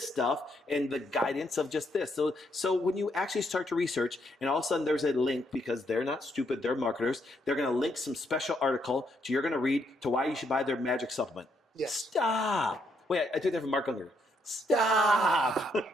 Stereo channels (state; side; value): normal; both; correlation 0.75